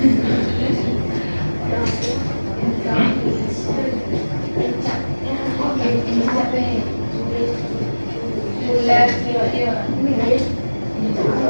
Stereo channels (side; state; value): both; inverted; correlation -1.00